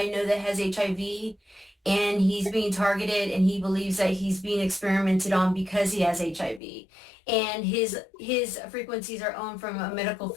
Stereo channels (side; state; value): right; drops out; at 6.6 s